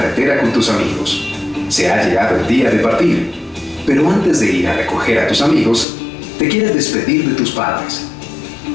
con tus amigos. Se ha llegado el día de partir, pero antes de ir a recoger a tus amigos, te quieres despedir de tus padres.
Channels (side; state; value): right; drops out; at 5.9 s